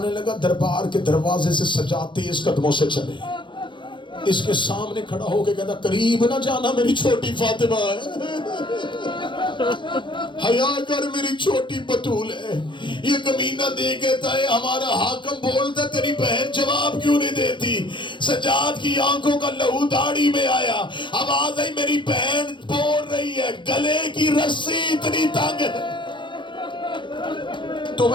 لگا دربار کے دروازے سے سجاد تیز قدموں سے چلے. اس کے سامنے کھڑا ہو کے کہتا قریب نہ جانا میری چھوٹی فاطمہ ہے، حیا کر میری چھوٹی بطول ہے. یہ کمینہ دے کہتا ہے ہمارا حاکم بولتا تیری بہن جواب کیوں نہیں دیتی؟ سجاد کی آنکھوں کا لہو داڑھی میں آیا. آواز آئی میری بہن بول رہی ہے گلے کی رسی اتنی تنگ ہے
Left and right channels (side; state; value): right; late; 0.23 ms